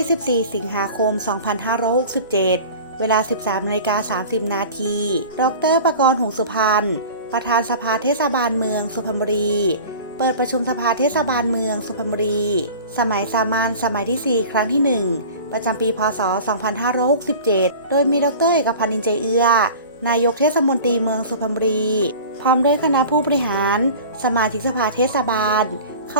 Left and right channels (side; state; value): both; inverted; correlation -0.39